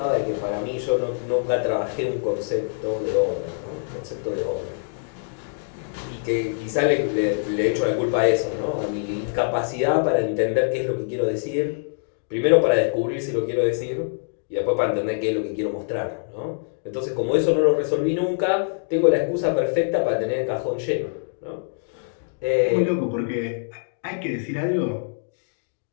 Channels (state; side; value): silent; right; digital silence